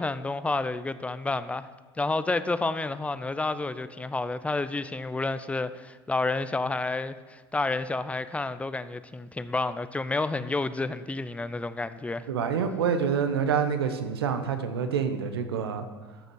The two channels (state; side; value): normal; both; correlation 0.52